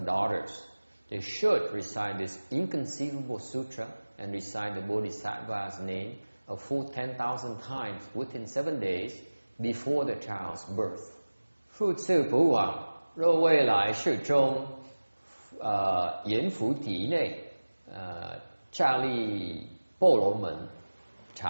they should recite this inconceivable sutra and recite the Bodhisattva's name a full 10,000 times within 7 days before the child's birth. Phu Tzu Pu Wang, 若未来世中阎浮体内刹利波罗门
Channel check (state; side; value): inverted; both; correlation -1.00